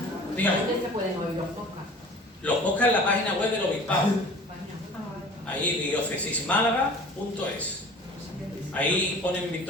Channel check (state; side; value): normal; both; correlation 0.44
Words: Dígame. ¿Dónde se pueden oír los podcasts? Los podcasts en la página web del obispado. Ahí, diocesismálaga.es. Ahí ponen